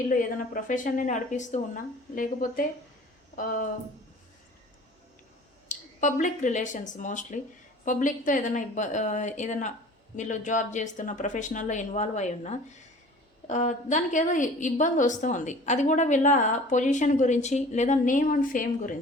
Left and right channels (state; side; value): normal; both; correlation 0.45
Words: ఏదైనా ప్రొఫెషన్ని నడిపిస్తూ ఉన్నా, లేకపోతే పబ్లిక్ రిలేషన్స్ మోస్ట్లీ పబ్లిక్తో ఏదైనా వీళ్ళు జాబ్ చేస్తున్న ప్రొఫెషనల్లో ఇన్వాల్వ్ అయి ఉన్నా, దానికి ఏదో ఇబ్బంది వస్తూ ఉంది. అది కూడా వీళ్ళ పొజిషన్ గురించి లేదా నేమ్ అండ్ ఫేమ్